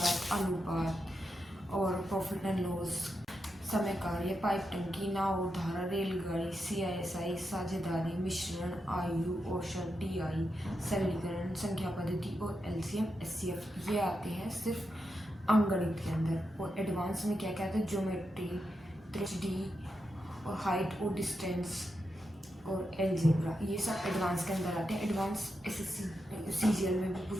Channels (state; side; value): normal; both; correlation 0.86